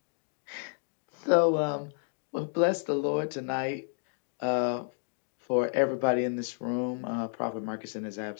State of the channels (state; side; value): silent; right; digital silence